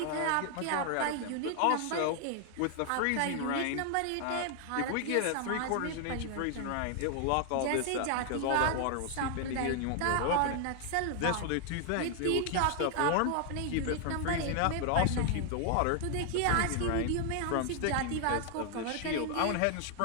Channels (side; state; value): both; different; correlation 0.00